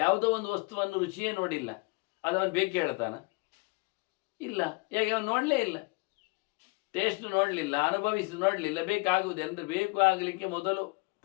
ಒಂದು ವಸ್ತುವನ್ನು ರುಚಿಯೇ ನೋಡಿಲ್ಲ, ಅದು ಅವನು ಬೇಕು ಹೇಳ್ತಾನ? ಇಲ್ಲ. ಯಾಕೆ? ಅವನು ನೋಡಲೇ ಇಲ್ಲ, ಟೇಸ್ಟ್ ನೋಡಲಿಲ್ಲ, ಅನುಭವಿಸಿ ನೋಡಲಿಲ್ಲ. ಬೇಕಾಗುವುದು ಅಂದರೆ ಬೇಕು ಆಗಲಿಕ್ಕೆ ಮೊದಲು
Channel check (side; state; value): right; quieter; 28.3 dB